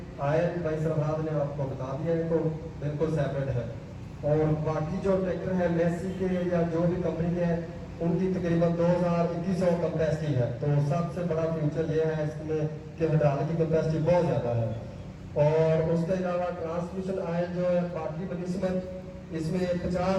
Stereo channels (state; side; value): identical; both; correlation 1.00